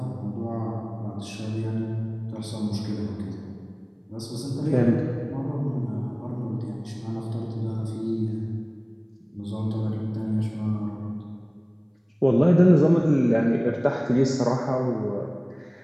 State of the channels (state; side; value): identical; both; correlation 1.00